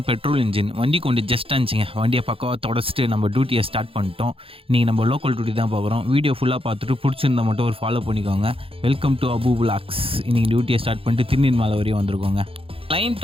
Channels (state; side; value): late; left; 0.27 ms